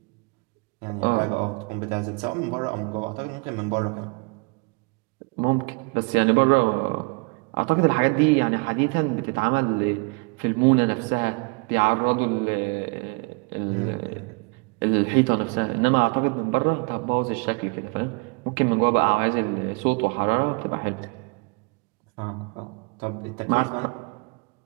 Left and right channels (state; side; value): quieter; left; 32.3 dB